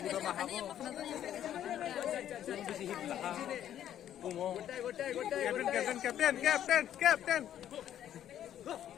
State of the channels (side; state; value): right; quieter; 10.9 dB